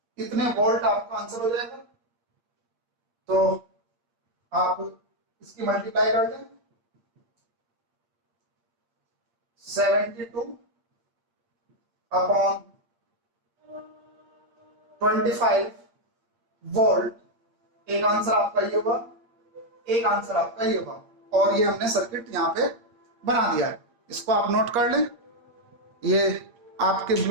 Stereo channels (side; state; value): left; late; 8.6 ms